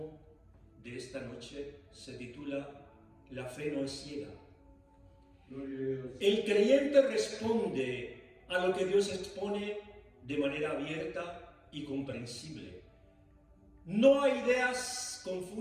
de esta noche se titula La fe no es ciega. El creyente responde a lo que Dios expone de manera abierta y comprensible. No a ideas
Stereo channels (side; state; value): both; identical; correlation 1.00